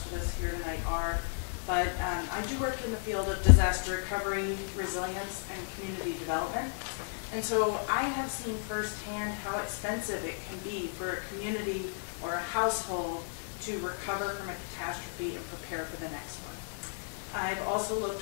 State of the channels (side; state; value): right; silent; 56 dB below the other